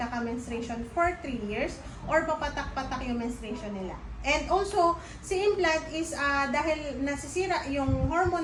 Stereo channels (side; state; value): both; identical; correlation 1.00